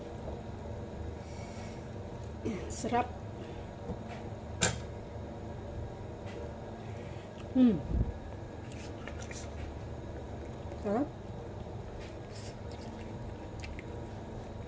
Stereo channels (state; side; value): identical; both; correlation 1.00